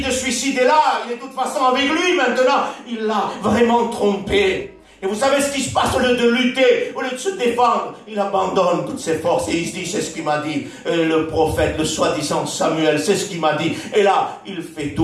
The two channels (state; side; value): identical; both; correlation 1.00